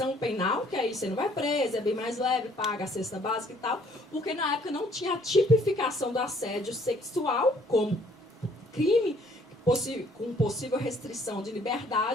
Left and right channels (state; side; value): normal; both; correlation 0.61